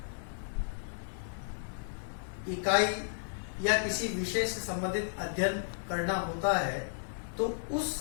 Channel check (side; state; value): right; silent; digital silence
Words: इकाई या किसी विषय से संबंधित अध्ययन करना होता है तो उस